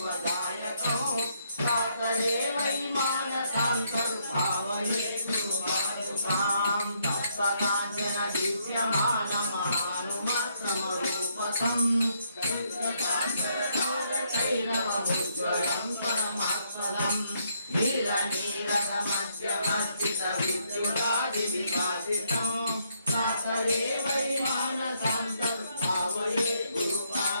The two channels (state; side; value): inverted; both; correlation -0.73